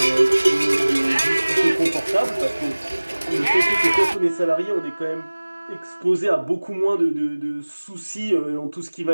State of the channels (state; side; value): inverted; both; correlation -1.00